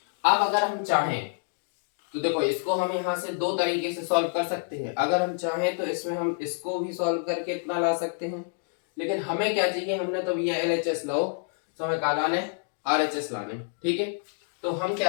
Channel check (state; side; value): silent; right; digital silence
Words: अब अगर हम चाहें तो देखो, इसको हम यहाँ से दो तरीके से सॉल्व कर सकते हैं। अगर हम चाहें तो इसमें हम इसको भी सॉल्व करके इतना ला सकते हैं, लेकिन हमें क्या चाहिए, हमने तो भैया LHS लो, तो हमें क्या लाने, RHS लाने। ठीक है, तो हम